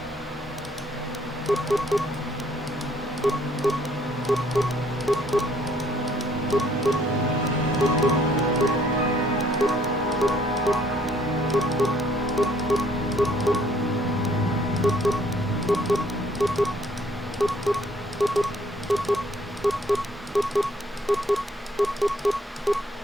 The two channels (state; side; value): normal; both; correlation 0.63